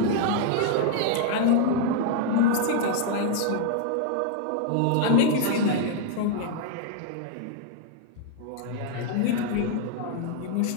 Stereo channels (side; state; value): both; different; correlation 0.00